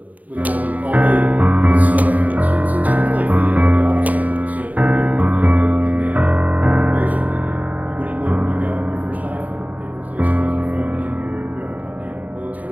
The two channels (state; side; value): late; left; 0.074 ms